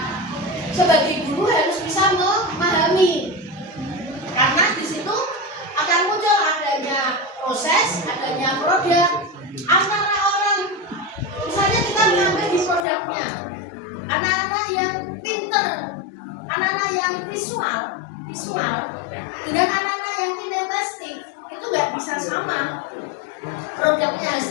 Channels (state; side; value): drops out; right; at 12.9 s